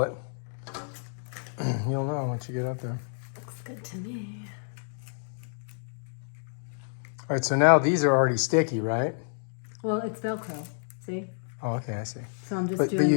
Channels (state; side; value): silent; right; digital silence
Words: it. You'll know once you get up there. Looks good to me. All right, so now these are already sticky, right? Well, it's Velcro, see? Oh, okay, I see. So I'm just But doing you